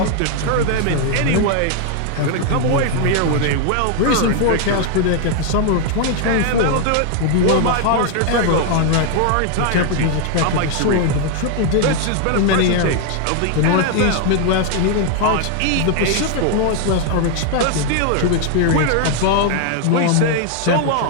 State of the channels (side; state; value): both; different; correlation 0.00